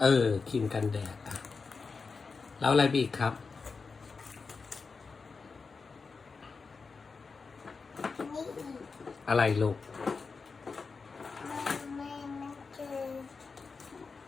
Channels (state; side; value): quieter; right; 4.7 dB